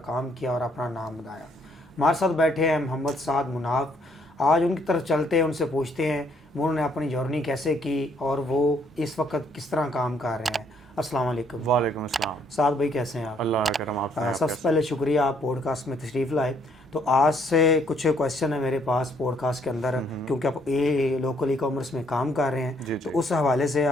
काम किया और अपना नाम बनाया। हमारे साथ बैठे हैं मोहम्मद साद मुनाफ। आज उनकी तरफ चलते हैं, उनसे पूछते हैं उन्होंने अपनी जर्नी कैसे की और वो इस वक्त किस तरह काम कर रहे हैं। अस्सलाम वालेकुम। वालेकुम अस्सलाम। साद भाई कैसे हैं आप? अल्लाह का करम। आप सबसे पहले शुक्रिया आप पॉडकास्ट में तशरीफ़ लाए। तो आज से कुछ क्वेश्चन है मेरे पास पॉडकास्ट के अंदर, क्योंकि आप ये लोकल ई कॉमर्स में काम कर रहे हैं, तो उस हवाले से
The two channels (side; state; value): both; normal; correlation 0.68